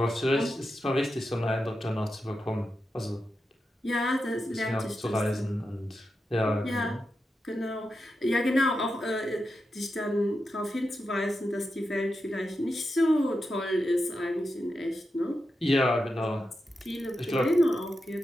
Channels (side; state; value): both; normal; correlation 0.88